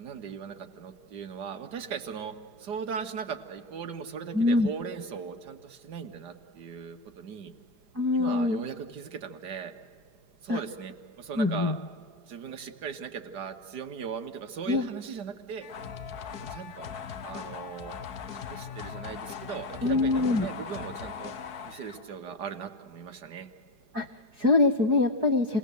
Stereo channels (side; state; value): left; late; 5.0 ms